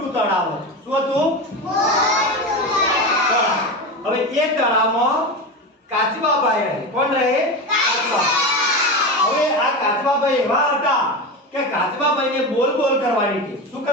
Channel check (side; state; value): both; normal; correlation 0.22